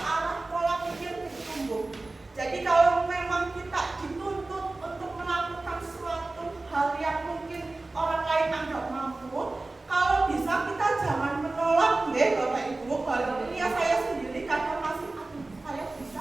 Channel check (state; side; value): quieter; left; 3.1 dB